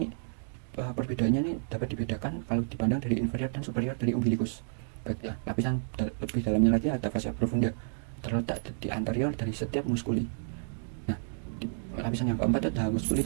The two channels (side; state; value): left; silent; digital silence